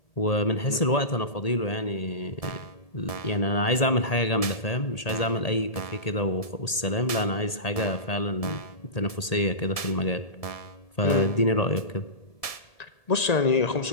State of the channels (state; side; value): late; right; 1.8 ms